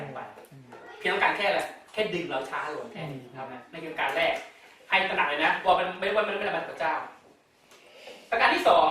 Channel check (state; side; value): identical; both; correlation 1.00